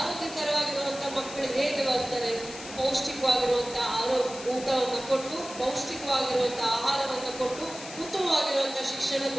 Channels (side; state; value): left; noise; hiss, 13 dB below the sound